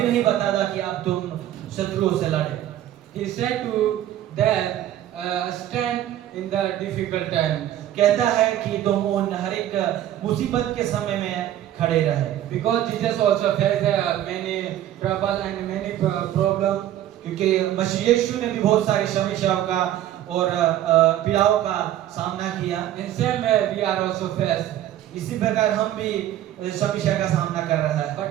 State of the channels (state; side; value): quieter; left; 12.3 dB